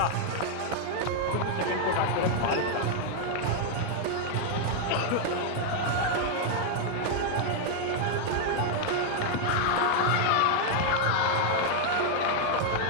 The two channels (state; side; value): different; both; correlation 0.00